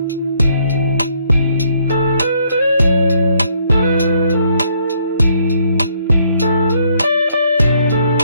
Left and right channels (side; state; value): both; inverted; correlation -0.69